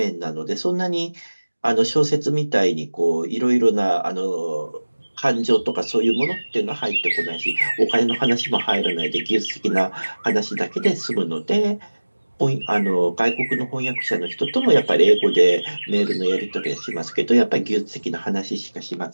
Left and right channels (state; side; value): inverted; both; correlation -1.00